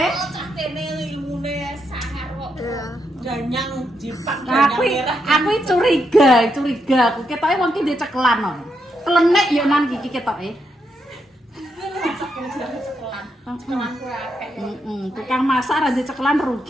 Cah kene ilmune sangar kok. Danyang jipak Aku aku curiga aku ketoke wong ki ndek cekelan kok. Klenek yo nan iki ketoke. Cekelan kowe akeh. Tukang masak ra ndek cekelan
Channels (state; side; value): normal; both; correlation 0.81